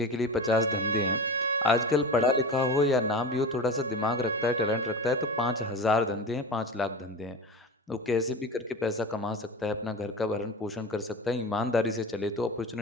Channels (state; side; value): normal; both; correlation 0.29